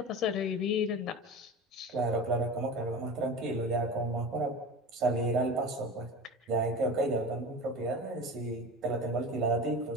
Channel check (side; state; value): both; normal; correlation 0.31